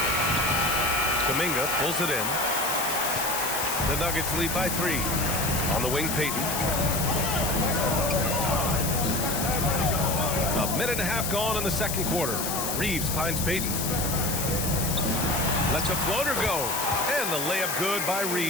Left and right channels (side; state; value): left; noise; hiss, 3 dB below the sound